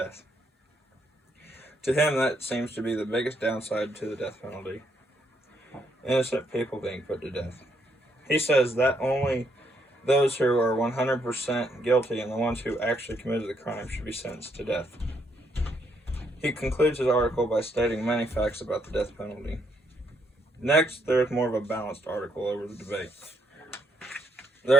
To him, that seems to be the biggest downside to the death penalty. Innocent people being put to death. He says that only those who are 100% guilty and the ones who actually committed the crime should be sentenced to death. He concludes his article by stating many facts about the death penalty. Next, there is more of a balanced article over the debate.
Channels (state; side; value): normal; both; correlation 0.73